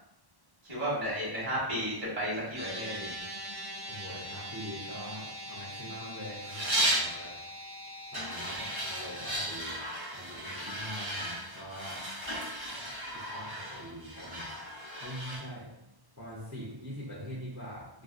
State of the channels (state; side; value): late; left; 1.1 ms